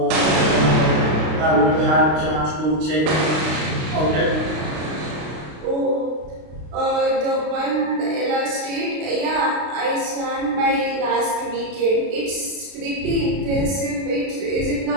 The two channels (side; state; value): left; late; 32 ms